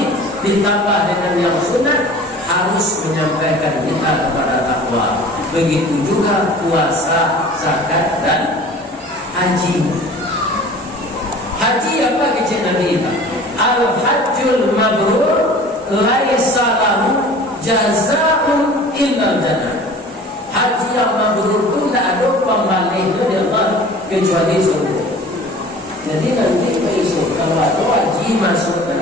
ditambah dengan yang sunat harus menyampaikan kita kepada takwa. Begitu juga puasa, zakat dan haji. Haji apa kecil Nabi kita? Al-hajjul mabrur laisa lahu jazaa'un illa jannah. Haji yang mabrur itu tidak ada pembalainya di Allah kecuali surga. Jadi nanti besok kalau ada haji masuk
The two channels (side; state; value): both; normal; correlation 0.44